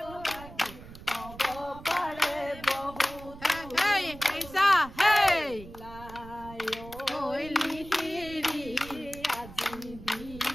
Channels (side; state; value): right; noise; rumble, 16 dB below the sound